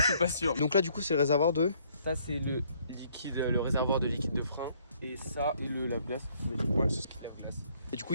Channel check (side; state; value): both; inverted; correlation -0.65